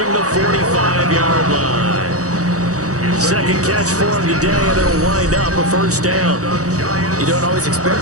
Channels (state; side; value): late; left; 0.66 ms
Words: the 45-yard line. 2nd catch for him today, and it'll wind up a 1st down. You don't always